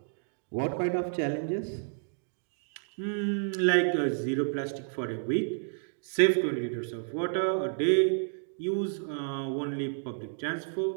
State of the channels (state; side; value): silent; left; digital silence